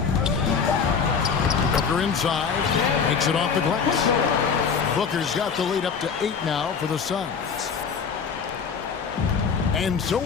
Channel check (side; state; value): right; quieter; 6.1 dB